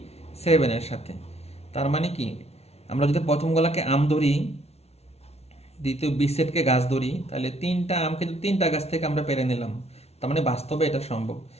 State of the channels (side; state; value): right; late; 0.31 ms